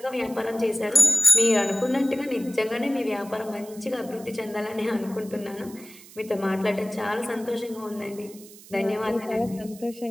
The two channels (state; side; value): noise; right; hiss, 20 dB below the sound